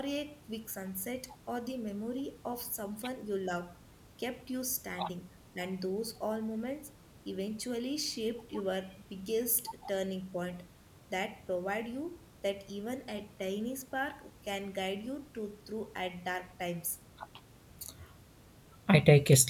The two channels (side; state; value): both; identical; correlation 1.00